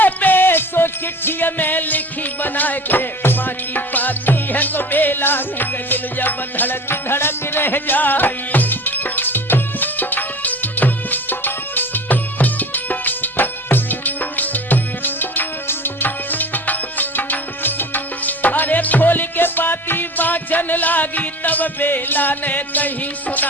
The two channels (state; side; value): normal; both; correlation 0.39